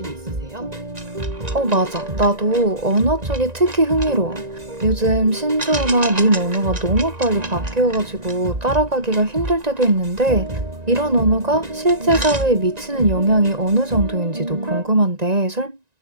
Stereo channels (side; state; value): left; late; 1.9 ms